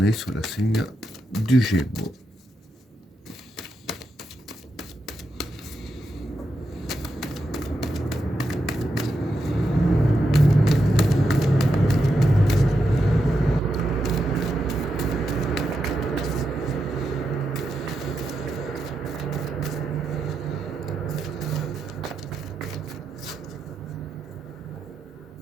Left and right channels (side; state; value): both; normal; correlation 0.85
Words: sous le signe du Gémeaux?